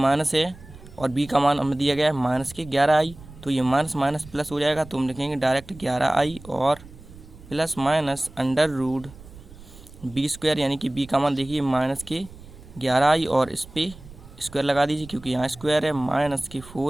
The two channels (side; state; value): right; noise; rumble, 19 dB below the sound